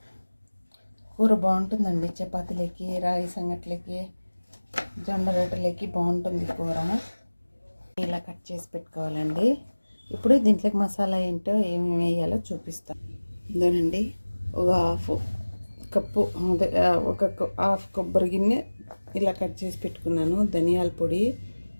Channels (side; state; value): both; inverted; correlation -1.00